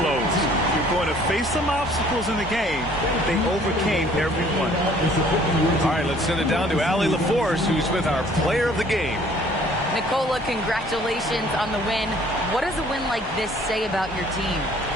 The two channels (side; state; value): both; normal; correlation 0.56